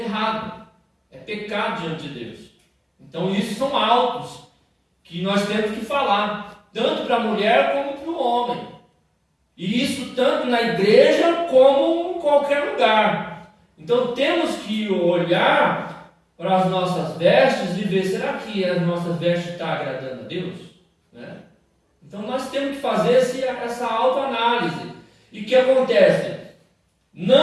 errado, é pecado diante de Deus. Então isso são autos que nós temos que falar, tanto para a mulher como para o homem, e isso tanto na igreja como em qualquer lugar. Então temos que olhar para as nossas vestes e ver, será que as nossas vestes estão agradando a Deus? Né? Então nós temos que fazer essa autoanálise. E o que acontece?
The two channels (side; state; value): both; identical; correlation 1.00